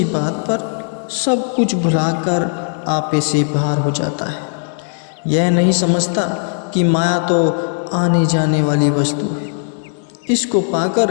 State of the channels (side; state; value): right; silent; digital silence